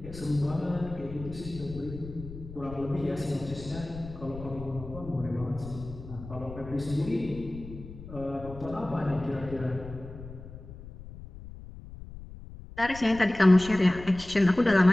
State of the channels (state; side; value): noise; left; rumble, 14 dB below the sound